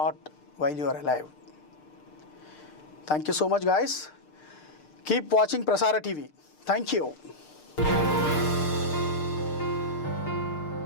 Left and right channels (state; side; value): late; right; 6.6 ms